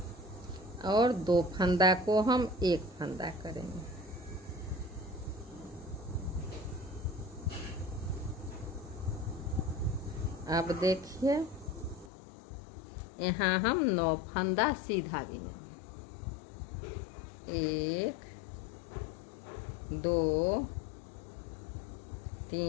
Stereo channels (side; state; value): right; drops out; at 12.1 s